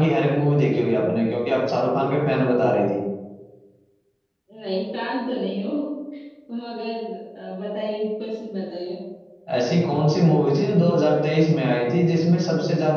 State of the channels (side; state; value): both; identical; correlation 1.00